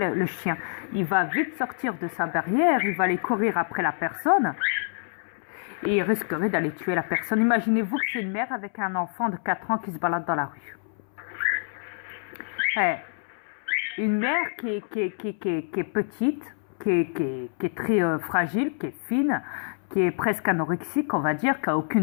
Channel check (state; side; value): silent; right; 60 dB below the other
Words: chien? Il va vite sortir de sa barrière, il va aller courir après la personne et il risquerait d'aller tuer la personne. Imaginez-vous que c'est une mère avec un enfant de 4 ans qui se balade dans la rue. Une mère qui est petite, qui est très fragile, qui est fine, qui est presque anorexique, on va dire, qui n'a